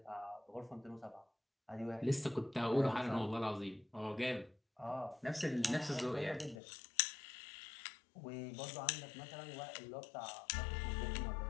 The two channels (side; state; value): right; drops out; at 6.6 s